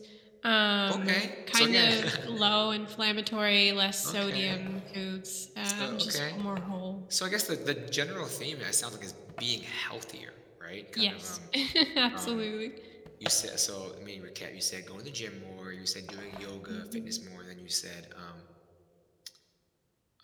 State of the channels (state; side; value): identical; both; correlation 1.00